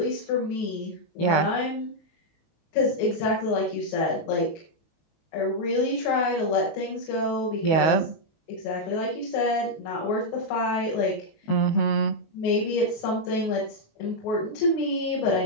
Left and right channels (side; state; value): right; late; 19 ms